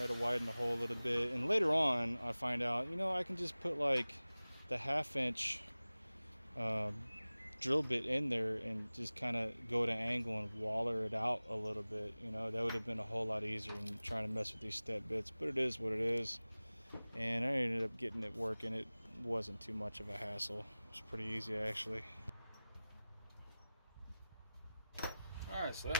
to widen the hole a little bit, and later on I find out, you know, I can just put like the 1/2" drill bit in there and just kind of go to angle and waller it out a little bit. You know, that would have been a whole lot easier than trying to mess with these step bits, but it is what it is. And I ended up getting it working. It wasn't too much of a hassle. It was pretty easy actually. Alright, so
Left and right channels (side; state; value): both; inverted; correlation -0.98